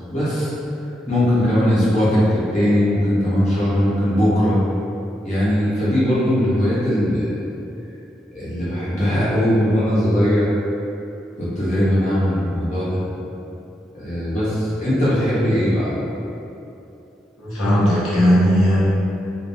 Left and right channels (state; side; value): normal; both; correlation 0.85